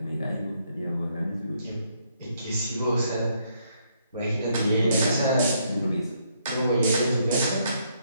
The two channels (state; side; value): inverted; both; correlation -0.73